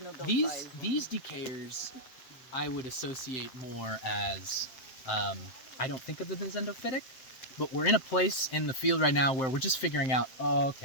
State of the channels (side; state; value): right; late; 7.7 ms